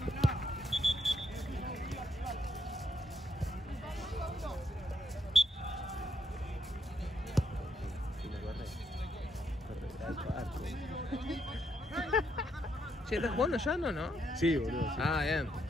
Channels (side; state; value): both; normal; correlation 0.76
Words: Che, ¿estás jugando ya no? Sí, boludo. Sí. Ah, bien.